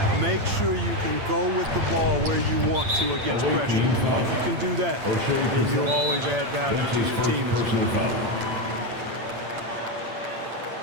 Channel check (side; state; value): left; late; 8.8 ms